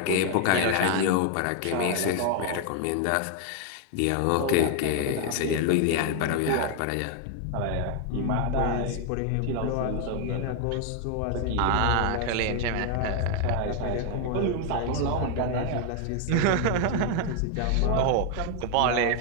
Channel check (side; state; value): both; different; correlation 0.00